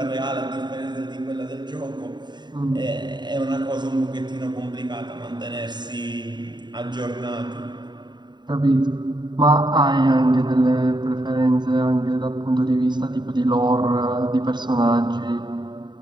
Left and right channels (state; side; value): late; left; 0.21 ms